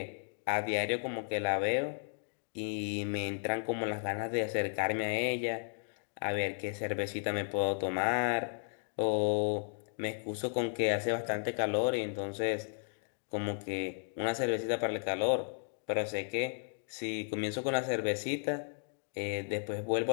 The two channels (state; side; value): silent; right; digital silence